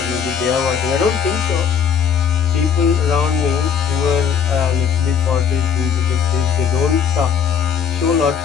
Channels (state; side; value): quieter; right; 7.3 dB